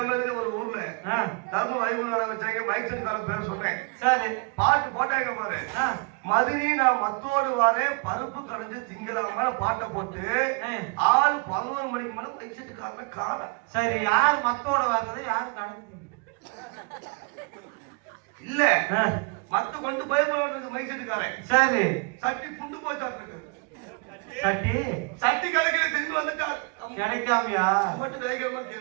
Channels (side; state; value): left; quieter; 31.7 dB